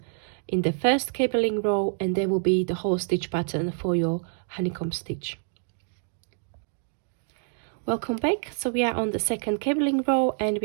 in the first cabling row, and there will be the whole stitch pattern for your honeycomb stitch. Welcome back. So we are on the second cabling row, and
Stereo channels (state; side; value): silent; left; digital silence